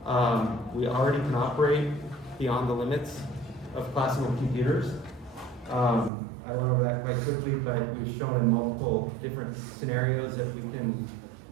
We already can operate beyond the limits of classical computers. I went over that quite quickly, but we've shown in multiple different scenarios that we can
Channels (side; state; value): left; drops out; at 6.1 s